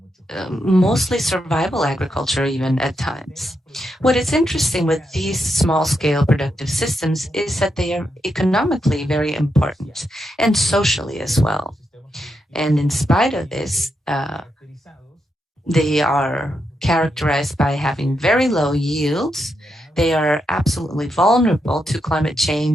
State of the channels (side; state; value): both; normal; correlation 0.83